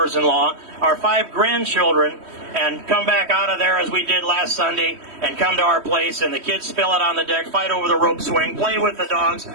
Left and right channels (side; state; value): left; late; 3.1 ms